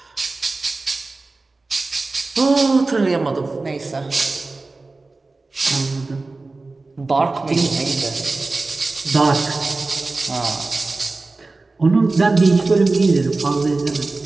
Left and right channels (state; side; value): quieter; left; 3.5 dB